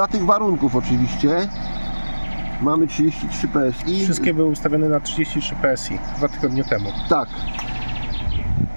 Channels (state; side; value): inverted; both; correlation -1.00